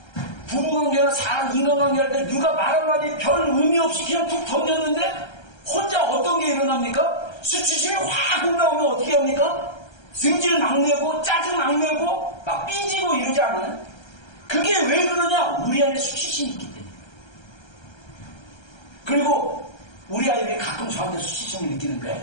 부부관계나 사람 인간관계 할 때 누가 말 한마디 별 의미 없이 그냥 툭 던졌는데 혼자 어떤 게 일어납니까? 수치심이 확 올라오면 어떻게 합니까? 승질 막 내고 짜증 막 내고 막 삐지고 이러지 않아요? 그게 왜 그러냐? 우리 안에 수치심이 있기 때문에. 그리고 우리 아이들이 가끔 저한테 수치심을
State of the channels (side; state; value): right; late; 1.3 ms